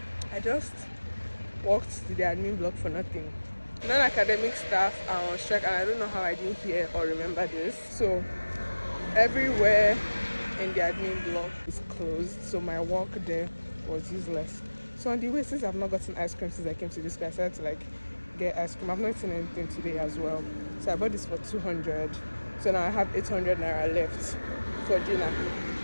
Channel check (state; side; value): inverted; both; correlation -1.00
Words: I just walked to the admin block for nothing. Non-academic staff are on strike, and I don't know how I didn't hear or remember this. So everywhere in the admin block is closed, so my walk there was useless. So on the way, since I've not gotten ice cream since I came to this class, I decided to like get ice cream. I've not eaten anything today as well, so I bought this for 200. So now I have 800 naira left for dinner.